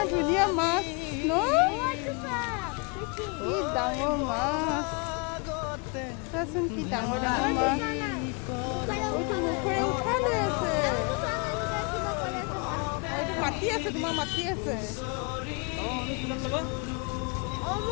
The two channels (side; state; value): right; quieter; 32.1 dB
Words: ধুনীয়া মাছ ন কি ডাঙৰ মাছ চাচোন কি ডাঙৰ ডাঙৰ মাছ এইটো মুখৰে উঠাই লৈ আছে এইটো মাতি আছে তোমাৰ মাতি আছে